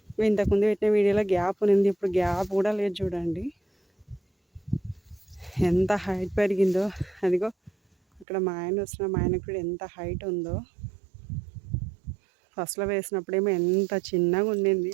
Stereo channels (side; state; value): left; drops out; at 8.2 s